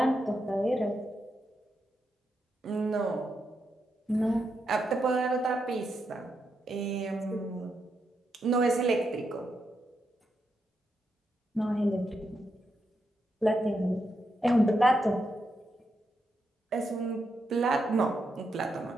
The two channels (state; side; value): normal; both; correlation 0.83